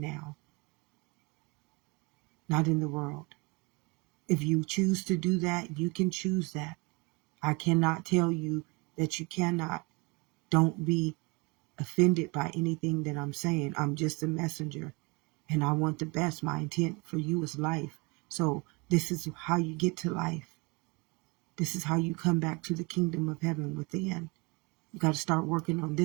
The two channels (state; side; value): quieter; left; 27.5 dB